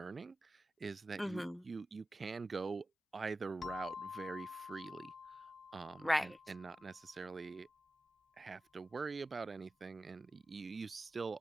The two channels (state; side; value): normal; both; correlation 0.94